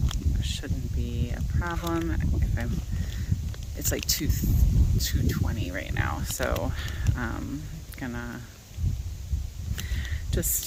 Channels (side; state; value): both; identical; correlation 1.00